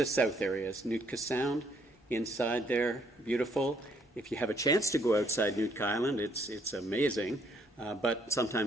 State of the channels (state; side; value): normal; both; correlation 0.68